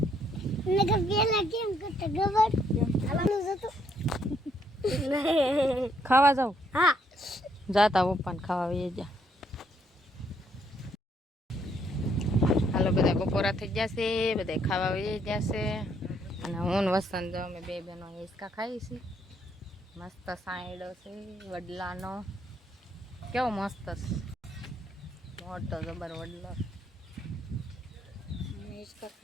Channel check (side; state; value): both; normal; correlation 0.71